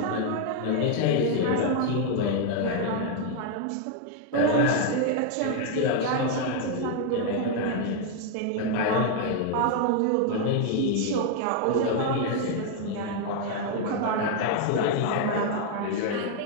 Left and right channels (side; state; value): both; different; correlation 0.00